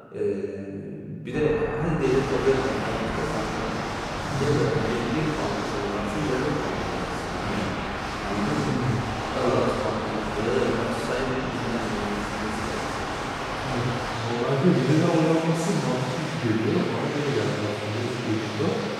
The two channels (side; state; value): both; identical; correlation 1.00